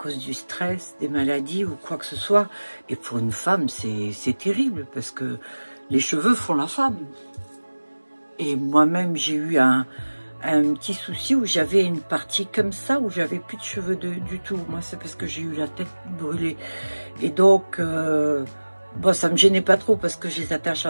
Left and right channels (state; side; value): inverted; both; correlation -1.00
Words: du stress, des maladies ou quoi que ce soit. Et pour une femme, c'est terrible parce que les cheveux font la femme. Et moi-même, j'ai eu un petit souci où j'avais une partie comme ça, où j'avais plus de cheveux du tout. Moi, c'est parce que j'ai eu la tête brûlée. Et donc... bon, ça me gênait pas trop parce que je les attache